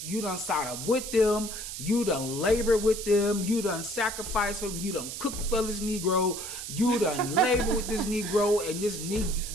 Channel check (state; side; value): noise; right; hiss, 7 dB below the sound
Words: start up with them. You done labor with them. You done sacrifice for them. You done cook for this Negro. You done labor with this Negro and